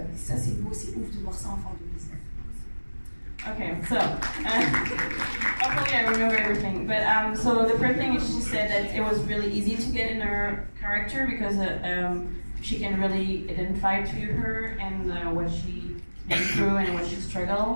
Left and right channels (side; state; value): both; inverted; correlation -1.00